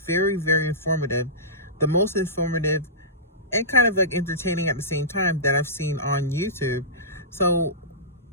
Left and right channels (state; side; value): normal; both; correlation -0.20